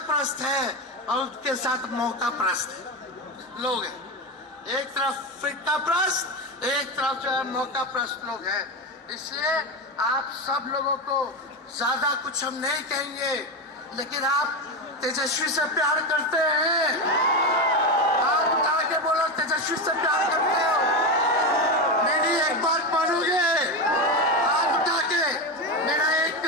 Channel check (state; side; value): normal; both; correlation 0.15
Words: प्रस्त है और उसके साथ मौका प्रस्त लोग हैं। एक तरफ फिरका प्रस्त, एक तरफ जो है मौका प्रस्त लोग हैं। इसलिए आप सब लोगों को ज्यादा कुछ हम नहीं कहेंगे, लेकिन आप तेजस्वी से प्यार करते हैं? आप उठा के बोलो, तेजस्वी से प्यार करते हो? मेरी एक बात मानोगे? हाथ उठा के मेरा एक